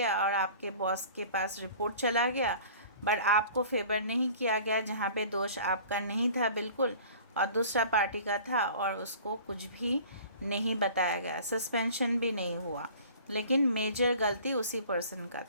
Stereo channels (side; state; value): both; inverted; correlation -0.46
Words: और आपके बॉस के पास रिपोर्ट चला गया, बट आपको फेवर नहीं किया गया, जहाँ पे दोष आपका नहीं था बिल्कुल और दूसरा पार्टी का था और उसको कुछ भी नहीं बताया गया, सस्पेंशन भी नहीं हुआ, लेकिन मेजर गलती उसी पर्सन का